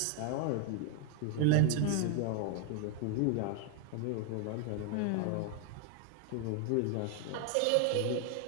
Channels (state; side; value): different; both; correlation 0.00